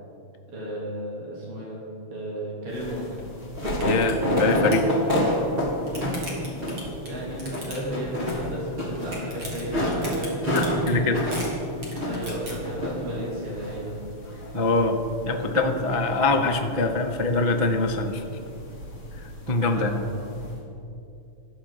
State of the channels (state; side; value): late; left; 6.7 ms